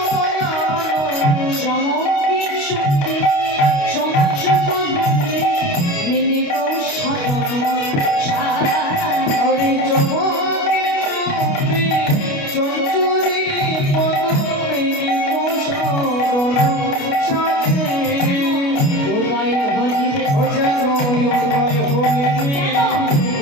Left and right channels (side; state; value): right; late; 29 ms